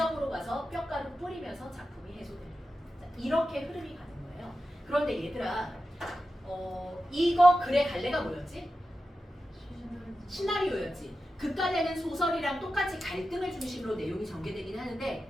가서 뼈가루 뿌리면서 작품이 해소됩니다. 자, 이렇게 흐름이 가는 거예요. 그런데 얘들아, 이거 글의 갈래가 뭐였지? 시나리오였지. 극갈래는 소설이랑 똑같이 갈등을 중심으로 내용이 전개되긴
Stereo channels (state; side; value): normal; both; correlation 0.92